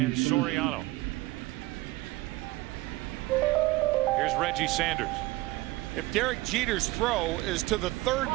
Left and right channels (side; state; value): left; quieter; 19.6 dB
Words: Soriano. Here's Reggie Sanders. If Derek Jeter's throw is to the third